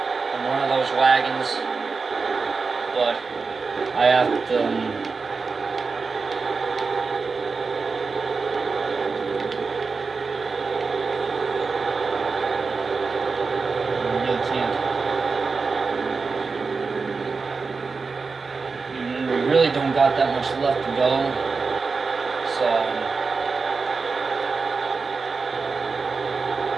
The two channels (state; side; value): quieter; left; 4.6 dB